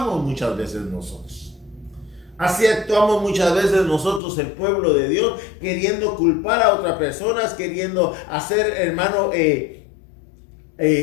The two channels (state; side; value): drops out; right; at 4.2 s